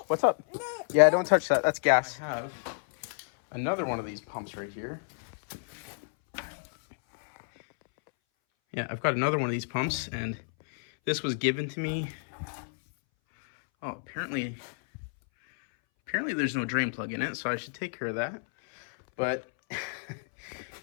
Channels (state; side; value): silent; right; 58 dB below the other